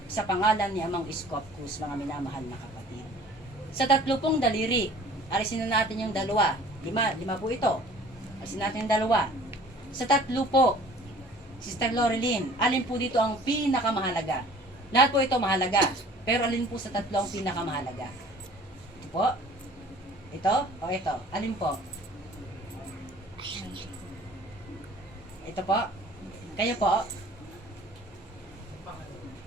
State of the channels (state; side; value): normal; both; correlation 0.50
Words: sa pangalan ni Amang Scopus, mga minamahal na kapatid. Sa tatlo pong daliri, alisin na natin yung dalawa. Lima po ito. Alisin natin yung dalawa. Sa tatlo po, Sister Lorilyn, alin po dito ang pinakamahalaga? Lahat po ito mahalaga. Pero alin po sa tatlo ang pinakamahalaga? Ito po? Ito? O ito? Alin po? Ito po? Kayo po?